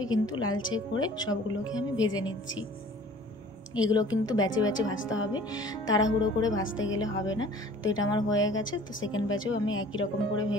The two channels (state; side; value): normal; both; correlation 0.49